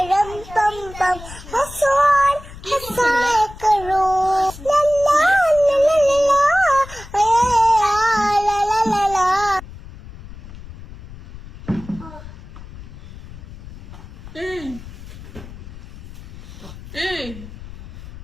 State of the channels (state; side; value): noise; left; rumble, 15 dB below the sound